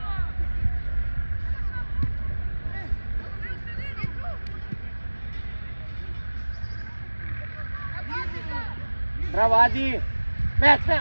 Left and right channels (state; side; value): inverted; both; correlation -1.00